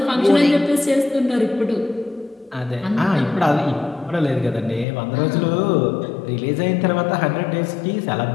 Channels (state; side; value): drops out; right; at 4.9 s